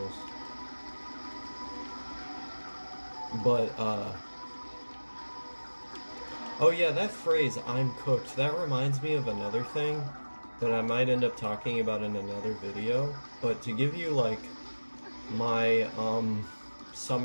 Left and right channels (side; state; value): both; inverted; correlation -1.00